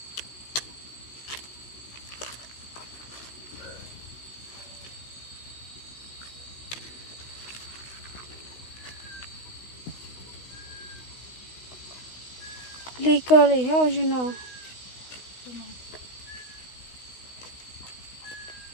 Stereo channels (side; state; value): right; late; 16 ms